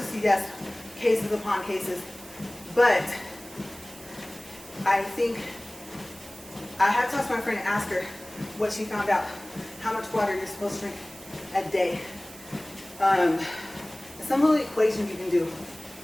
yes, cases upon cases, but I think I had to ask my friend and ask her what she found out, how much water you're supposed to drink a day. Some little equation you can do.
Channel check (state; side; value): noise; right; hiss, 19 dB below the sound